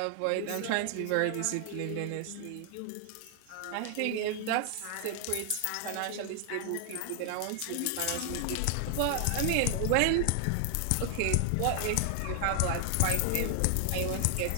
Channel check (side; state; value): both; different; correlation 0.00